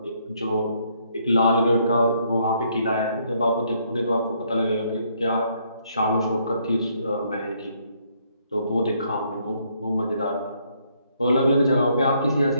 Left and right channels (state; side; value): inverted; both; correlation -0.70